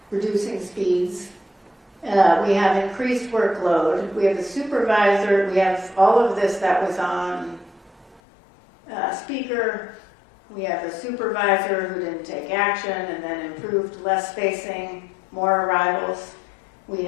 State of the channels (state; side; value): drops out; right; at 8.2 s